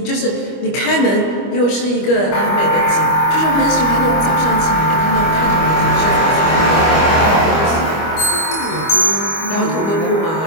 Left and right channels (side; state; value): right; late; 25 ms